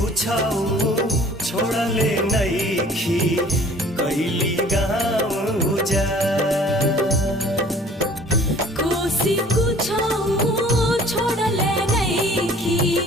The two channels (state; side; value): normal; both; correlation 0.51